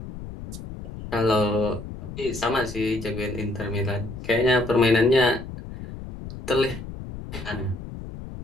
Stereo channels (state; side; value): noise; left; rumble, 11 dB below the sound